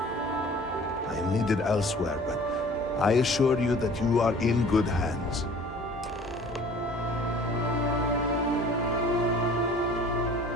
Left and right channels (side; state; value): both; normal; correlation 0.49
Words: I am needed elsewhere, but I assure you that you are in good hands.